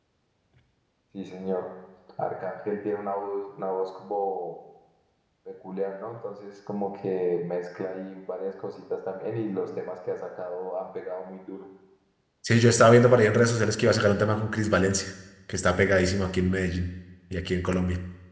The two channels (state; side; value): identical; both; correlation 1.00